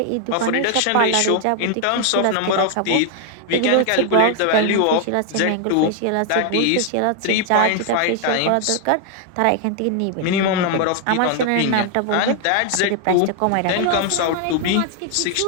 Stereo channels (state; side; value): different; both; correlation 0.00